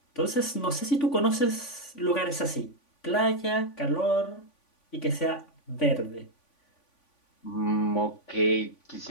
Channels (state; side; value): late; right; 3.5 ms